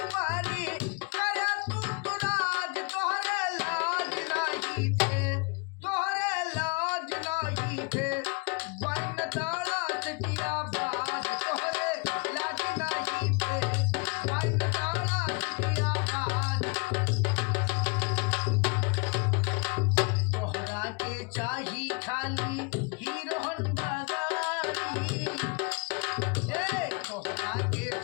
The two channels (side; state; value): right; quieter; 32.0 dB